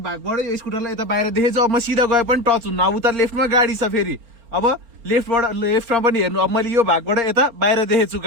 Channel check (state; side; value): late; left; 4.3 ms